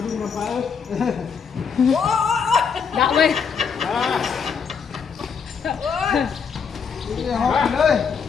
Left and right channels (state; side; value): quieter; right; 6.3 dB